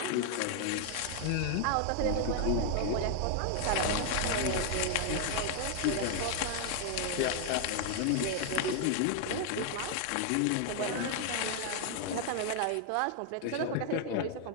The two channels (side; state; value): both; different; correlation 0.00